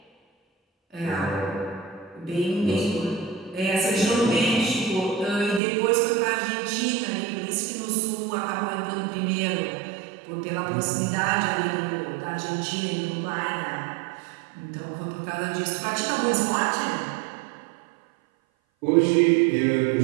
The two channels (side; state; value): left; drops out; at 5.6 s